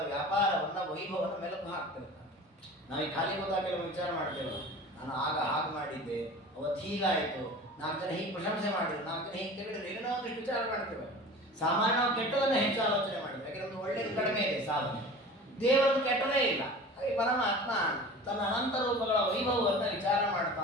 ವ್ಯಾಪಾರವನ್ನು, ವೈಭವವನ್ನು ಮೆಲುಕು ಹಾಕ್ತಿರ್ತಾನೆ. ನಾವು ಈ ಖಾಲಿ ಗೊತ್ತಾಗ ಕೆಲವು ವಿಚಾರ ಮಾಡ್ತೇವೆ. ನಾನು ಆಗ ಹಾಗೆ ಮಾಡಿದ್ದೆ, ಅವತ್ತು ಹೀಗಾಯಿತು, 4 ಜನ ಹೀಗೆ ಪ್ರಶಂಸೆ ಮಾಡಿದ್ರು, 4 ಜನ ಹೀಗೆ ತೆಗೆದ್ರೆ ಏನೋ ಒಂದಿಷ್ಟು ವಿಚಾರ ಮಾಡ್ತೇವೆ. ಸಾಮಾನ್ಯ ನಾವು ಕೆಟ್ಟದನ್ನು ಹೆಚ್ಚು ಆಲೋಚನೆ ಮಾಡಿದ್ವಿ. ಯಾಕೆ? ನಮ್ದು ಒಳ್ಳೆಯದು ಕಡಿಮೆ ಇದೆ ಸಾಧನೆ, ದೇವರದ್ದು ಕೆಟ್ಟದೇ ಇಲ್ಲ. ಹಾಗೆ ಪರಮಾತ್ಮ ತನ್ನ ಅನಂತ ರೂಪಗಳ ವೈಭವವನ್ನು ವಿಚಾರ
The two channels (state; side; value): normal; both; correlation 0.38